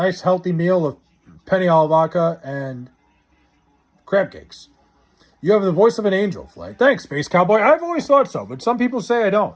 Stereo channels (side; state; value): both; identical; correlation 1.00